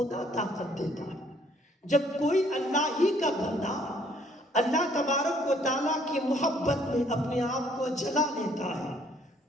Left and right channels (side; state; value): both; normal; correlation 0.63